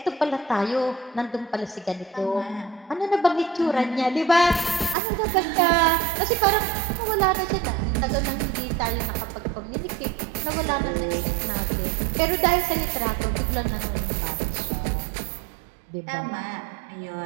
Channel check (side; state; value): left; drops out; at 5.0 s